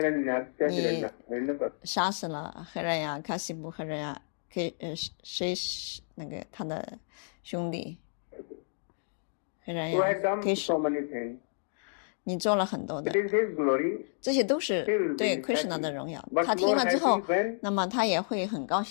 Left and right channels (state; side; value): silent; right; digital silence